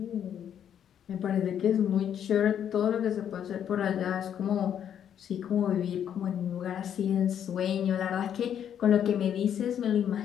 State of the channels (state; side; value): quieter; right; 9.3 dB